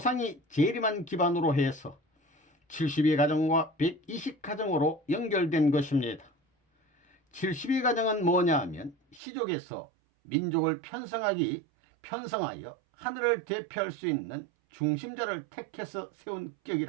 재림한 기반으로 해서 72가정과 120가정으로 연결된 것입니다. 72가정은 뭐냐 하면 시족에서 민족을 편성하여 하늘을 대표할 수 있는 중심자를 택해서 세운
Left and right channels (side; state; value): left; drops out; at 9.2 s